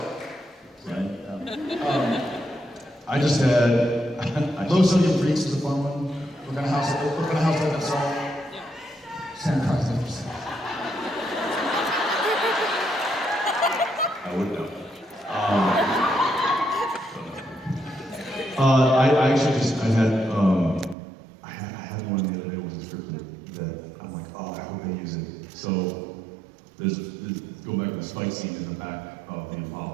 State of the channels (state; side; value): drops out; left; at 21.0 s